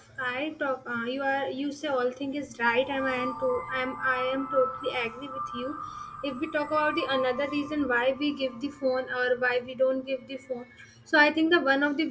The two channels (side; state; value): both; identical; correlation 1.00